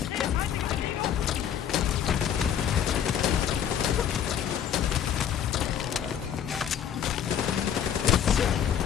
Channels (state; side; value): quieter; right; 9.0 dB